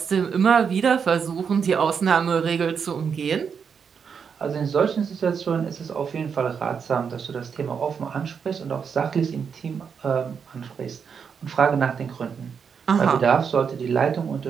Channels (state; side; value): quieter; left; 6.6 dB